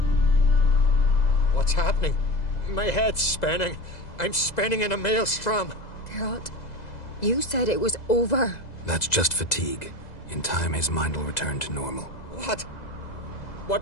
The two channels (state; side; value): late; right; 2.0 ms